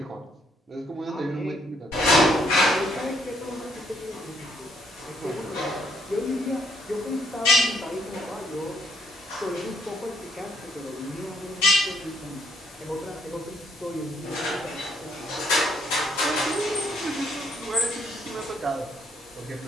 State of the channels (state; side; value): normal; both; correlation 0.69